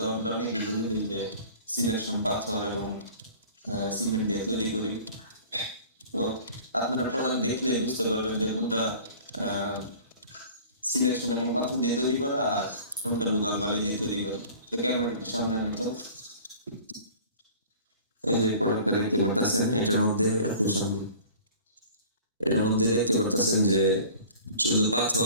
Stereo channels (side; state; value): both; inverted; correlation -0.45